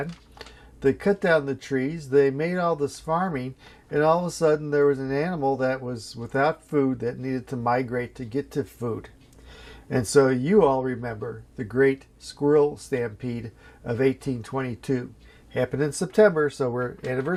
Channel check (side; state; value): both; identical; correlation 1.00